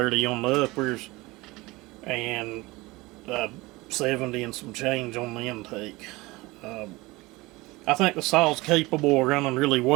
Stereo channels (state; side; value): quieter; left; 21.8 dB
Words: on the uppers, and 70 and some change on the intake. I think the saw's capable of running really